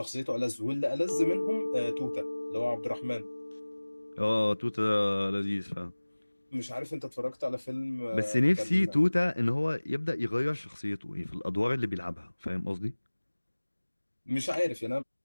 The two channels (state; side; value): inverted; both; correlation -1.00